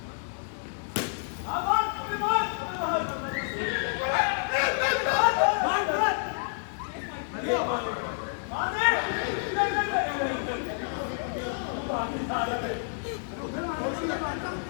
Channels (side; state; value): right; silent; digital silence